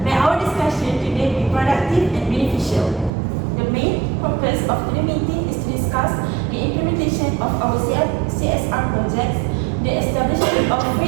May our discussion today be productive and beneficial. The main purpose of the meeting is to discuss the implementation of our CSR projects, the establishment of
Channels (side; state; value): left; drops out; at 3.1 s